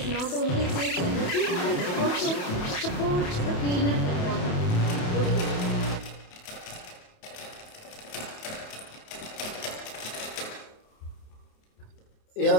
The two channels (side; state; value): right; late; 28 ms